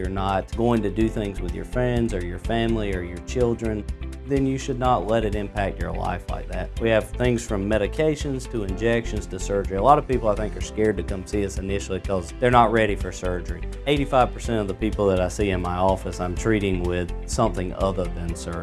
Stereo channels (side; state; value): both; identical; correlation 1.00